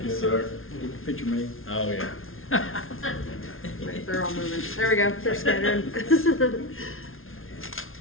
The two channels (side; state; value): right; late; 0.61 ms